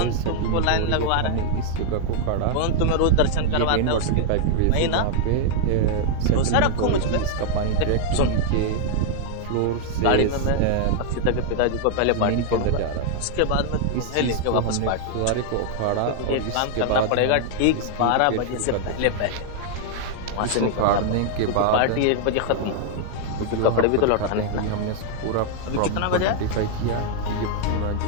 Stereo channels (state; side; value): different; both; correlation 0.00